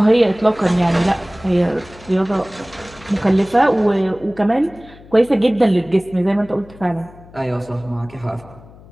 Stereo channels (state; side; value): noise; left; hum, 22 dB below the sound